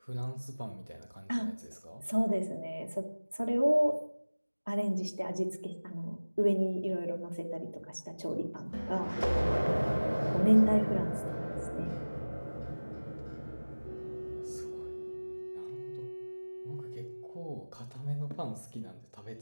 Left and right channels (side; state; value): both; inverted; correlation -1.00